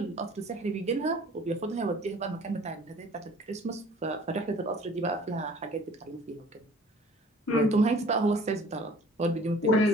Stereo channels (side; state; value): both; normal; correlation 0.50